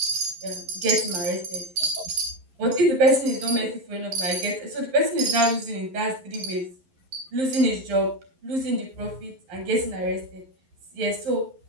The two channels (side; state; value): left; late; 11 ms